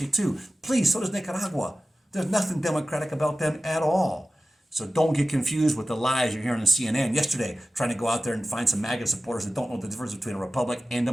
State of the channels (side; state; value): both; normal; correlation 0.94